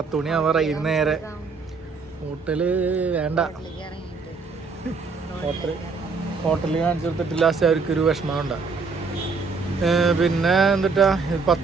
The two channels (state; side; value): quieter; left; 4.6 dB